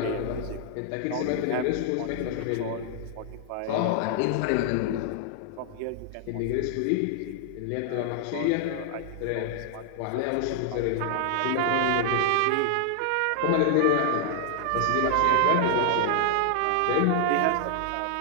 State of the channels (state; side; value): different; both; correlation 0.00